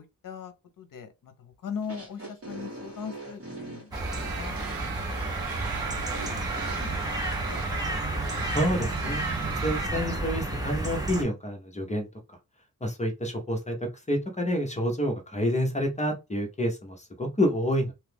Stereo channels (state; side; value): normal; both; correlation 0.52